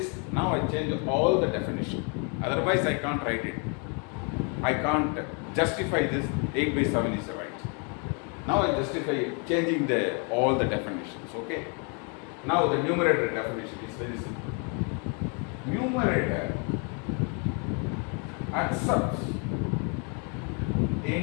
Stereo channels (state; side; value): quieter; right; 36.8 dB